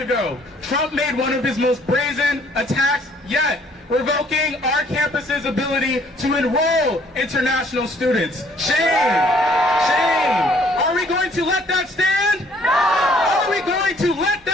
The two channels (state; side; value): normal; both; correlation 0.61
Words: Trump made one of his most brazen attacks yet, revoking our campus's ability to enroll international students. Shame! Shame! Are we going to let that stand? No! Are we going to let